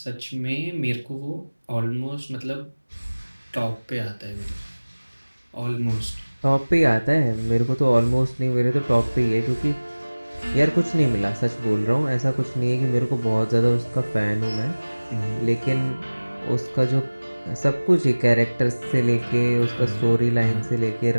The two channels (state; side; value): inverted; both; correlation -1.00